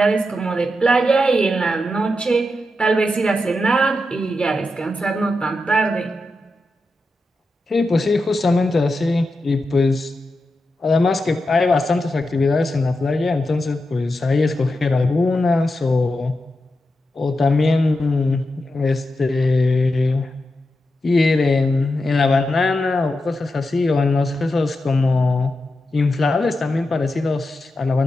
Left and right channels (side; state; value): both; normal; correlation 0.88